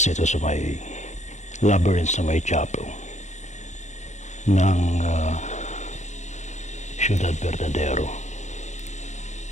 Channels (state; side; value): late; right; 0.34 ms